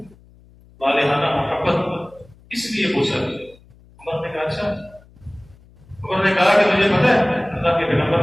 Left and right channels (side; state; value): left; noise; hum, 27 dB below the sound